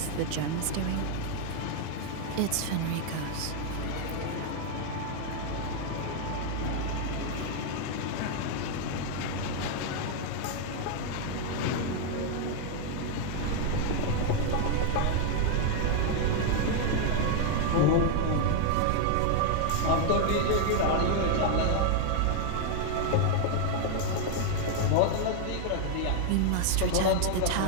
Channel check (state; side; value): different; both; correlation 0.00